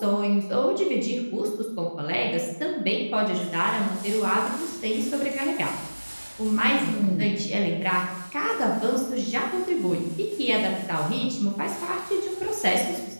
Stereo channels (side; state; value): both; inverted; correlation -1.00